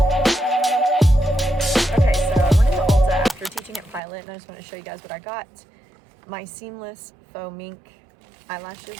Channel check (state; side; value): drops out; left; at 4.0 s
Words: just want to show you guys what I got. My seamless faux mink eyelashes